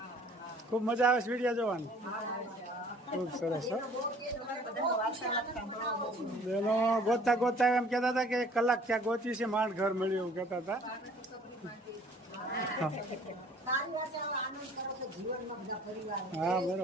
ખૂબ મજા આવે છે વિડીયા જોવાની, ખૂબ સરસ। બેનો ગોતતા ગોતતા એમ કહેતા હતા કે 1 કલાક ત્યાં ગોતી છે, માંડ ઘર મળ્યું એવું કહેતા હતા। હા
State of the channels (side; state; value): both; normal; correlation 0.54